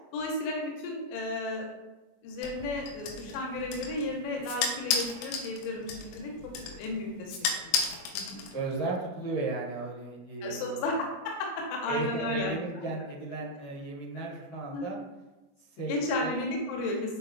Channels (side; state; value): right; late; 21 ms